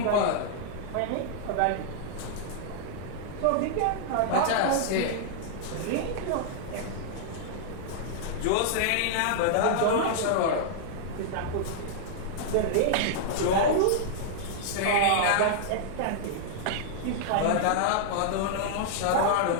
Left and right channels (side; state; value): both; different; correlation -0.01